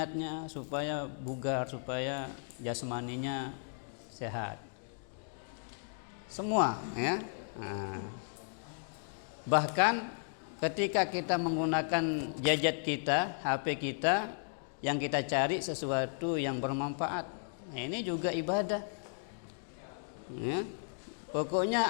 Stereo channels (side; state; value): right; silent; digital silence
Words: Supaya bugar, supaya jasmaninya sehat. Semua ya. Bahkan ketika kita menggunakan gadget kita, HP kita, yang kita cari sesuatu yang bermanfaat, ini juga ibadah ya.